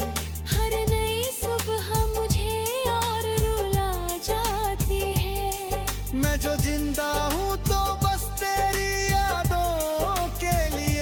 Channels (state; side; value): identical; both; correlation 1.00